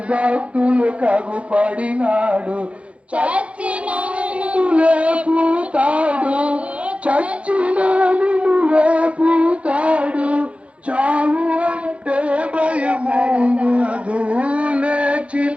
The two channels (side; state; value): left; late; 0.062 ms